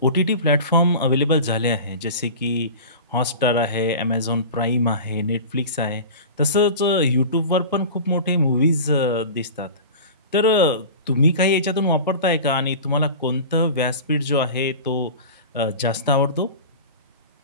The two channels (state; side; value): inverted; both; correlation -0.34